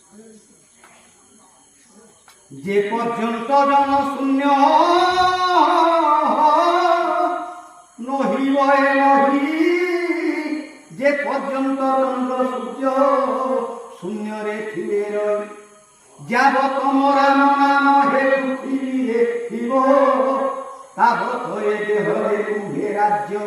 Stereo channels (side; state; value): both; identical; correlation 1.00